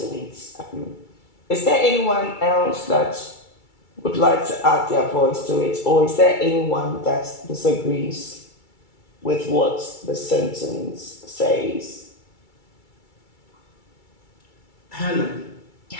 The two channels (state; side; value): late; right; 2.3 ms